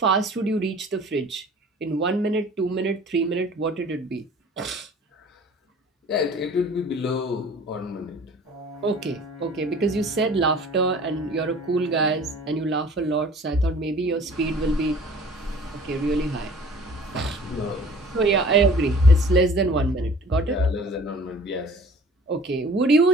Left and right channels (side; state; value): both; normal; correlation 0.48